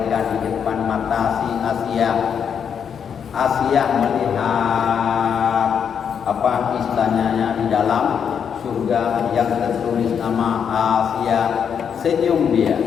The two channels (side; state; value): right; quieter; 7.5 dB